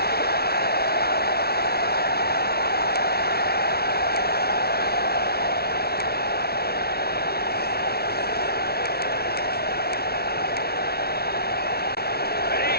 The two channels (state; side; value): late; right; 0.45 ms